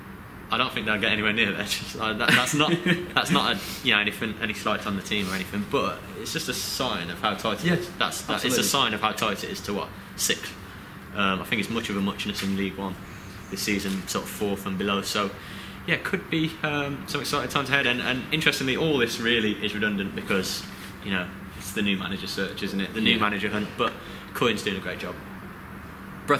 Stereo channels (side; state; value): both; identical; correlation 1.00